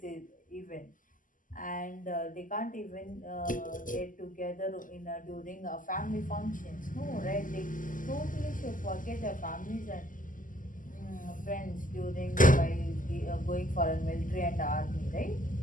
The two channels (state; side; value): late; right; 0.38 ms